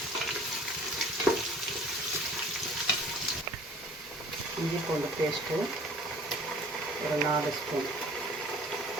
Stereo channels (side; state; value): both; normal; correlation 0.50